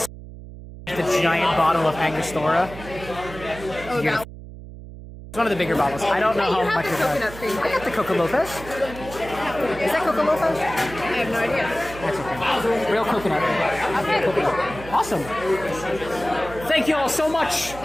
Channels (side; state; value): right; noise; hum, 14 dB below the sound